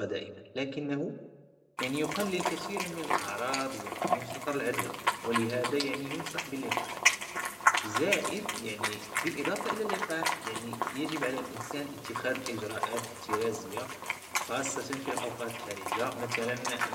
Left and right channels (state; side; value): identical; both; correlation 1.00